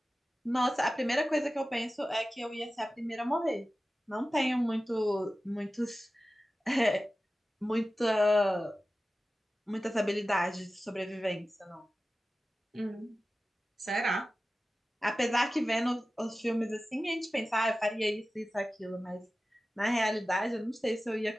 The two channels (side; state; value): both; normal; correlation 0.95